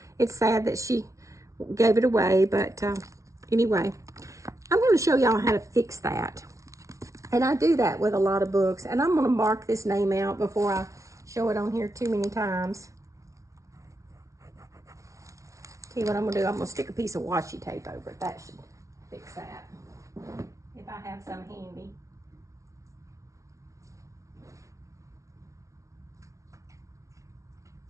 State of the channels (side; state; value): left; late; 0.15 ms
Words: it's sad that she gave it away, but anyway, I'm going to show y'all how to fix that. And I do that with a lot of books, and I'm going to mark this name out before I show it on here too many times. See what I'm going to do? I'm going to stick a piece of washi tape over it. That should fix that, if I have some handy.